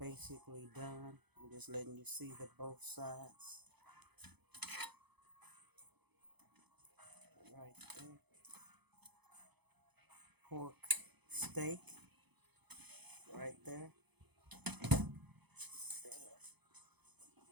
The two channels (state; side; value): late; left; 0.98 ms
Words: done. I'm just letting you see the both sides right there. Pork steak right there.